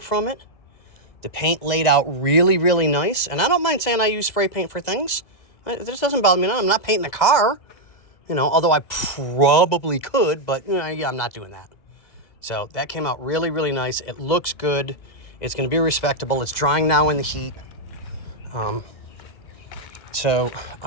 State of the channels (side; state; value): right; late; 2.0 ms